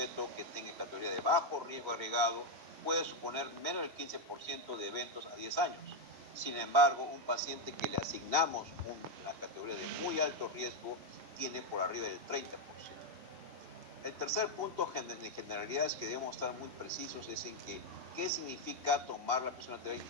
que tenga categoría de bajo riesgo agregado puede suponer menos del 15% de eventos a 10 años. Sin embargo, un paciente que le asignamos una categoría de muy alto riesgo tiene por arriba del 30%. El tercer punto de generalidades que debemos estar muy precisos es en que qué significa tomar la presión arterial y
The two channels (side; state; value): left; late; 2.7 ms